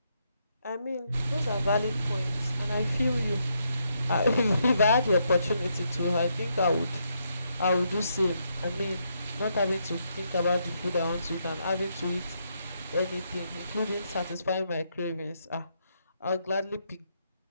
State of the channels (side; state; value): both; inverted; correlation -0.78